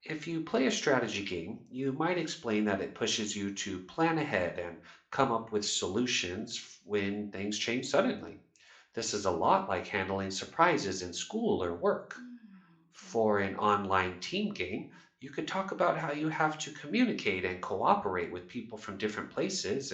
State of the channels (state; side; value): identical; both; correlation 1.00